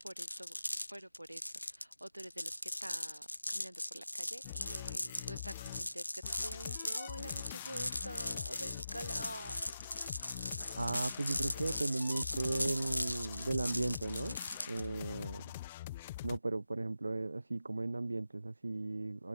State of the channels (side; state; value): both; inverted; correlation -0.92